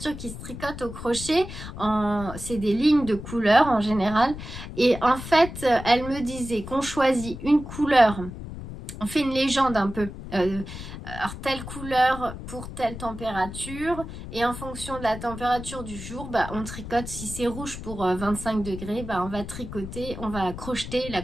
qui se tricote au crochet. C'est des lignes de couleurs en général. Et en fait, elle me disait qu'on choisit une couleur. On fait une légende un peu. Alors telle couleur pour telle température. Et en fonction de la température du jour, on tricote. Si c'est rouge pour 25 degrés, on va tricoter, on va crocheter la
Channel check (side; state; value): left; noise; rumble, 10 dB below the sound